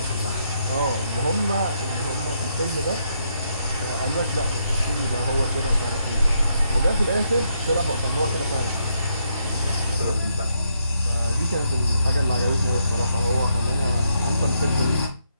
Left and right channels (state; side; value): inverted; both; correlation -0.77